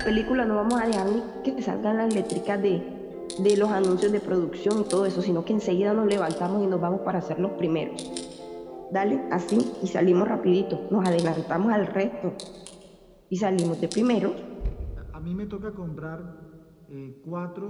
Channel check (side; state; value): both; identical; correlation 1.00